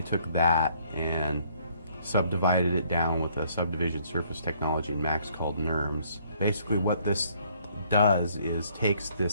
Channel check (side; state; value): both; inverted; correlation -0.64